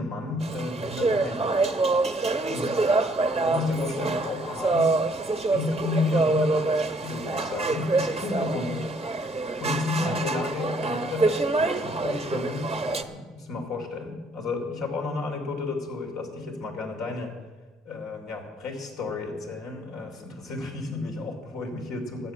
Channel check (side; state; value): both; normal; correlation 0.64